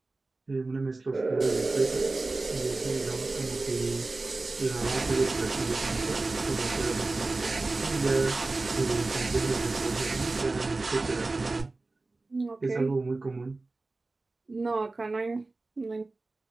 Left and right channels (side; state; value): left; quieter; 3.3 dB